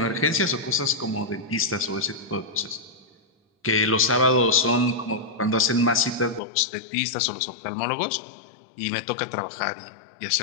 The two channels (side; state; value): right; drops out; at 6.4 s